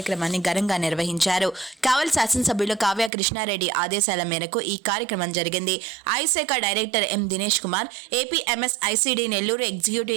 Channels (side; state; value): left; drops out; at 3.1 s